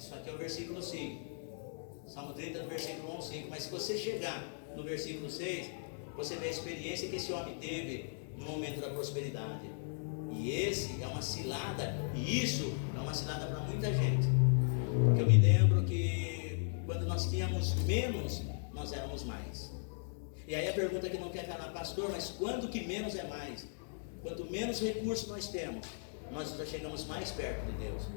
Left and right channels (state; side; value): silent; right; digital silence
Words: aqui é o versículo 5, Salmo 30, do versículo 1 ao 5. Mas se você chegar no versículo 6, você vê a experiência que esse homem teve no momento da prosperidade. E esse é uma cilada, e isso é uma cilada para muita gente. Porque eu me lembro que quando nós tínhamos menos, nós éramos mais. E aí a pergunta que não quer calar: pastor, mas quando que menos é mais? Quanto menos recursos nós temos, nós já chegamos mais perto de Deus.